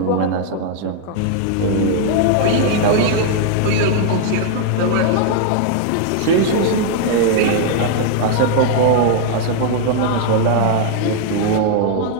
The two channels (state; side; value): different; both; correlation 0.00